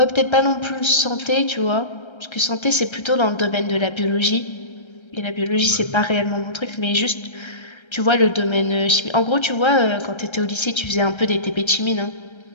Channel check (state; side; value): late; right; 1.3 ms